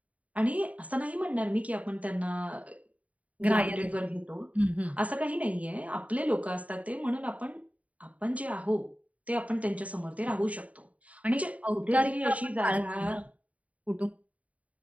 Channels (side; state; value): left; late; 0.068 ms